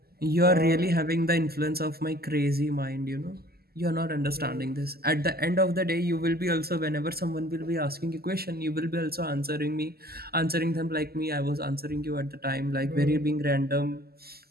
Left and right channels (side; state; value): left; late; 0.45 ms